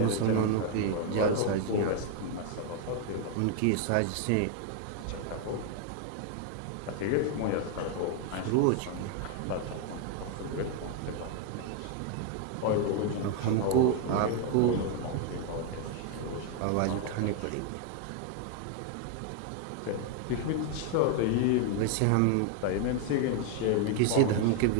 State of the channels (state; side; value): different; both; correlation 0.01